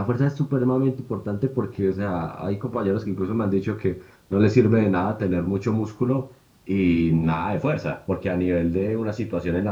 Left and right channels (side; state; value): both; identical; correlation 1.00